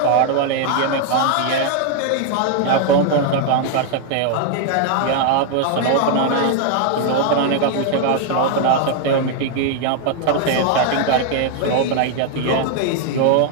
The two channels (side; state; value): both; different; correlation 0.00